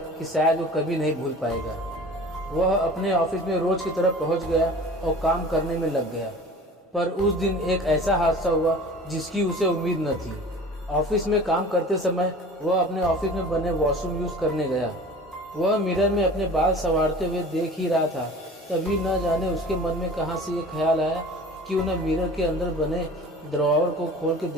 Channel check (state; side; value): normal; both; correlation 0.42